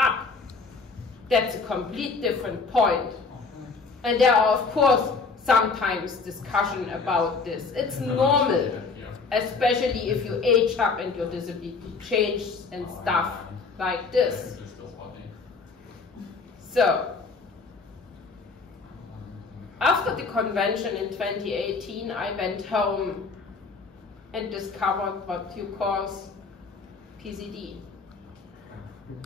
that's a complete different point. And there are, of course, sometimes discussion about this. It's normal, especially if you age up and your disability changes and stuff like this. So, after the convention in 2018, I went home and discovered what you call PCD.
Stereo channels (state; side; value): quieter; right; 4.5 dB